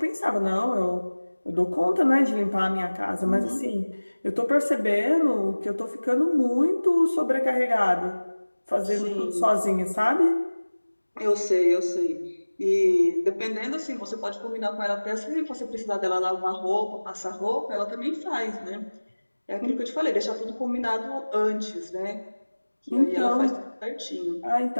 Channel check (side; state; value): both; inverted; correlation -1.00